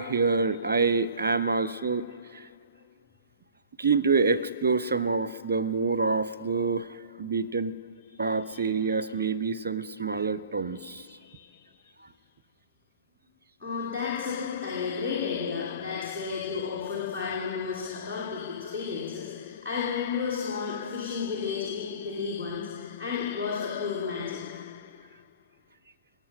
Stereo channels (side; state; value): both; inverted; correlation -0.45